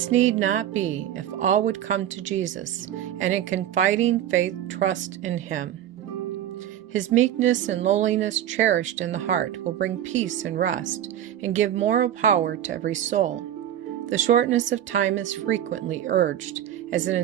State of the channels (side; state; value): left; quieter; 11.1 dB